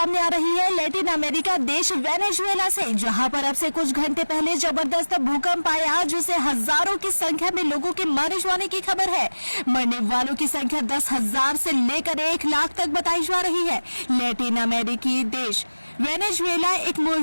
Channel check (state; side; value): inverted; both; correlation -1.00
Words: आ रही है लैटिन अमेरिका देश वेनेजुएला से, जहां पर अब से कुछ घंटे पहले जबरदस्त भूकंप आया जिससे हजारों की संख्या में लोगों के मारे जाने की खबर है। मरने वालों की संख्या 10,000 से लेकर 1 लाख तक बताई जा रही है। लैटिन अमेरिकी देश वेनेजुएला एक